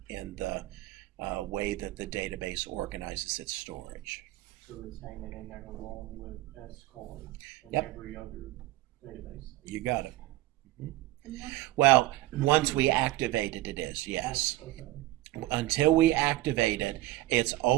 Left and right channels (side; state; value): left; quieter; 17.1 dB